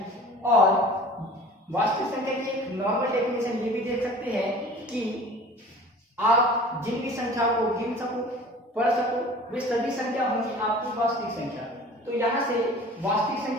और वास्तविक संख्या की एक नॉर्मल डेफिनेशन ये भी देख सकते हैं कि आप जिन भी संख्याओं को गिन सको, पढ़ सको, वे सभी संख्या होंगी आपकी वास्तविक संख्या। तो यहाँ से वास्तविक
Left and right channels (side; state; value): both; normal; correlation 0.43